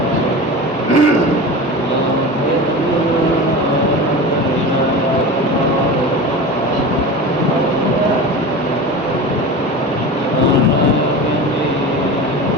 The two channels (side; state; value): both; normal; correlation 0.30